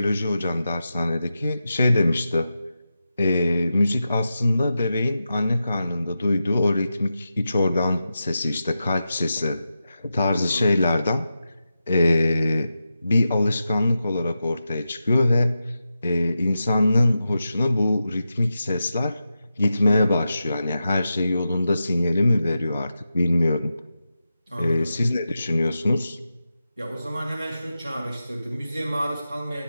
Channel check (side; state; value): both; inverted; correlation -0.90